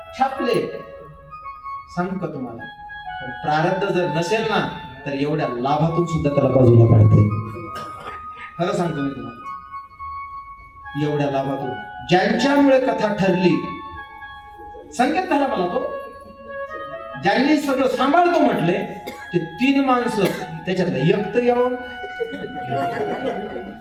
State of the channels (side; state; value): both; identical; correlation 1.00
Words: छापले. सांगू का तुम्हाला, प्रारब्ध जर नसेल ना तर एवढ्या लाभातून सुद्धा त्याला बाजूला काढते. खरं सांगतो मी तुम्हाला, एवढ्या लाभातून ज्यांच्यामुळे कथा ठरली, संकेत झाला मला तो, ज्यांनी सगळं सांभाळतो म्हटले ते 3 माणसं, त्याच्यातलं एक तर येऊन